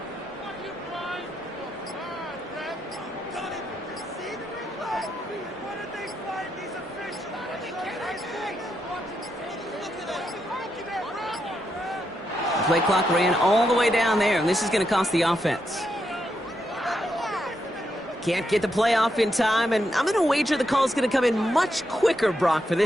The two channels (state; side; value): normal; both; correlation 0.82